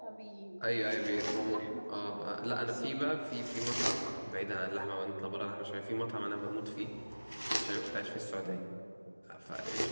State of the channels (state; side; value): inverted; both; correlation -1.00